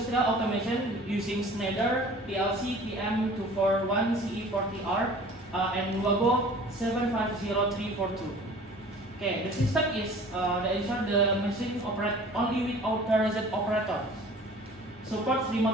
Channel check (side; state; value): both; normal; correlation 0.46